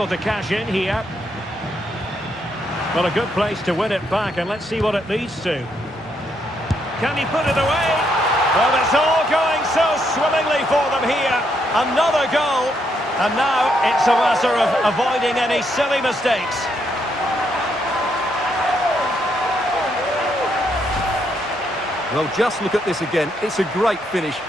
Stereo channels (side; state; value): both; normal; correlation 0.76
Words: to cash in here. Well, a good place to win it back, and let's see what it leads to. Can he put it away? Well, it's all going so swimmingly for them here. Another goal, and now it's a matter of avoiding any silly mistakes. Well, just look at this again. It's a great finish.